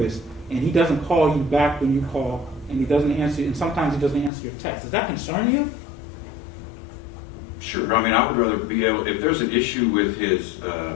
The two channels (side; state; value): right; drops out; at 4.3 s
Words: and he doesn't call you back when you call, and he doesn't answer, and sometimes he doesn't answer your text. Does that concern you? Sure. I mean, I would rather be able, if there's an issue with his